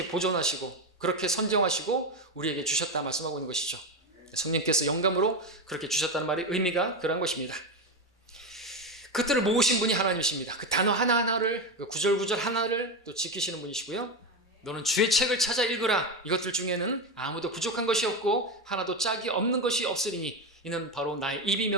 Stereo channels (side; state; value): both; normal; correlation 0.14